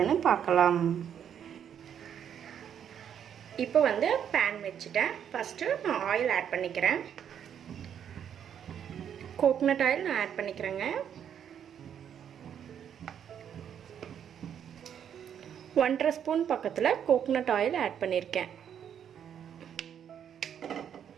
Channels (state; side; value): quieter; left; 8.8 dB